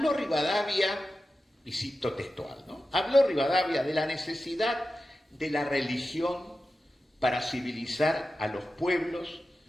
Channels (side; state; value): both; normal; correlation 0.92